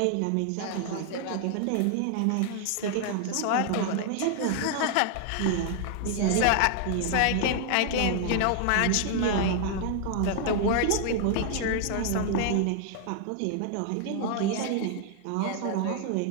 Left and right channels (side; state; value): both; different; correlation 0.00